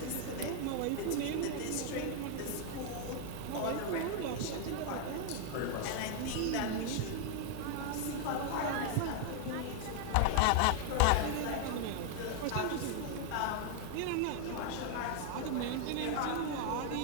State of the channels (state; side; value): different; both; correlation 0.00